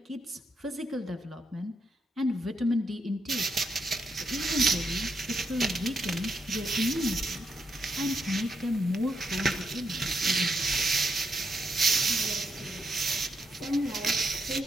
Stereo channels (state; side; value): normal; both; correlation 0.79